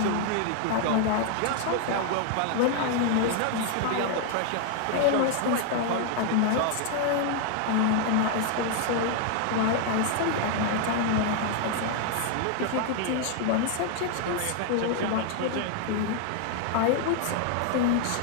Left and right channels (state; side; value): different; both; correlation 0.00